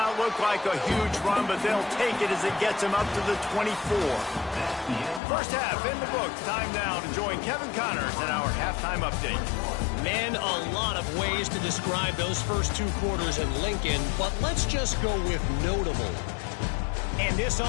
look like a huge run, but they'll take it as it gets him up to the 24. First half in the books. Time now to join Kevin Connors in our halftime update. Man, a lot of ways to describe those first 2 quarters in Lincoln, but let's just go with notable. And this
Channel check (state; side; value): drops out; right; at 5.2 s